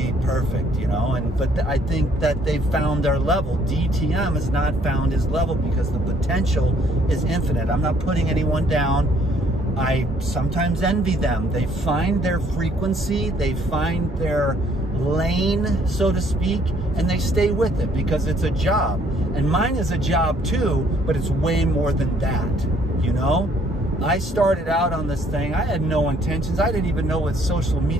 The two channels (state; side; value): normal; both; correlation 0.63